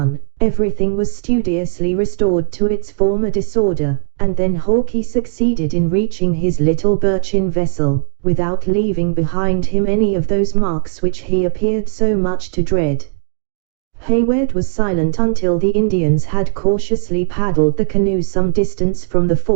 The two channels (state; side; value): silent; left; 62 dB below the other